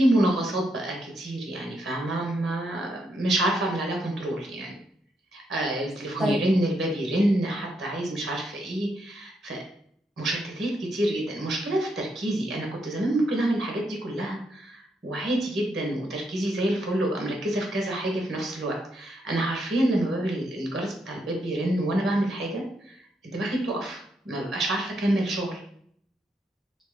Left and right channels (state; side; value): normal; both; correlation 0.78